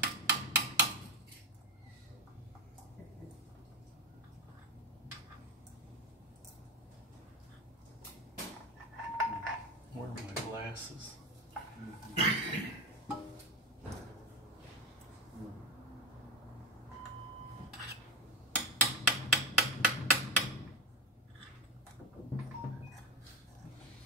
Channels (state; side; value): normal; both; correlation 0.18